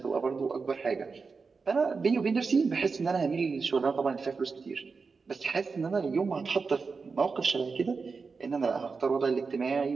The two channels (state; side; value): quieter; left; 4.7 dB